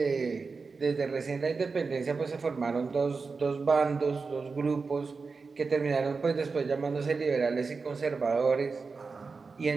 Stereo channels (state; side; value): quieter; left; 4.5 dB